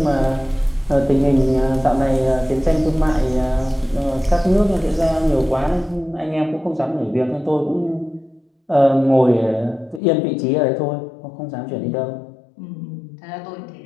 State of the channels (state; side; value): drops out; right; at 10.0 s